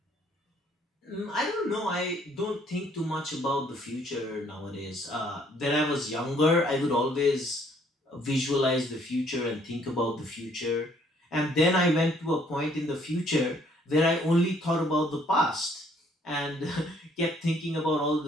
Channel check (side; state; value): both; normal; correlation 0.64